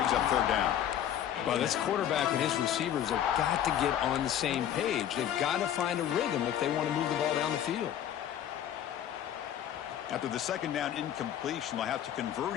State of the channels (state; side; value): quieter; right; 10.5 dB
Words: up third down. Well, this quarterback and his receivers have got to get on the same page. They've got to find a rhythm if they want to move the ball down the field. After the second down incompletion, they'll have to convert